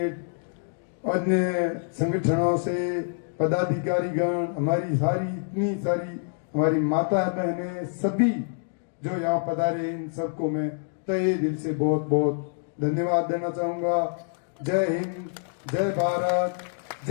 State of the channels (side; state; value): right; silent; digital silence